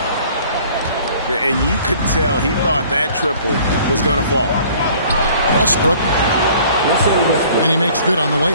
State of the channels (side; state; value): both; inverted; correlation -0.53